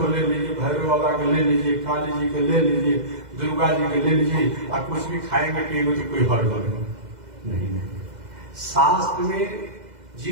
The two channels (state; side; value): late; left; 2.0 ms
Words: ले लीजिए, भैरव बाबा के ले लीजिए, काली जी के ले लीजिए, दुर्गा जी के ले लीजिए, और कुछ भी खाएंगे पिएंगे तो कोई हर्ज नहीं। शास्त्र में